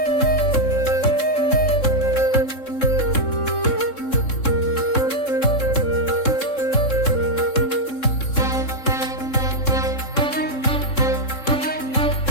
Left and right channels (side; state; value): right; late; 3.7 ms